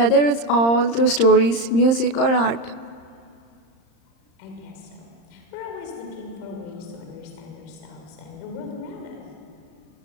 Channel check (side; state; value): right; late; 35 ms